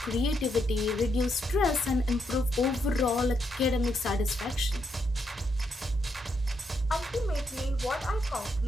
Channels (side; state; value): both; normal; correlation 0.79